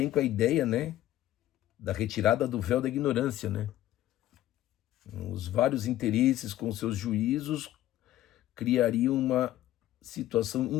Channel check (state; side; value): quieter; right; 13.9 dB